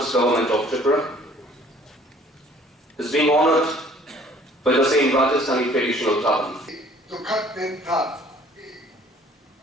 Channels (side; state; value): both; normal; correlation 0.55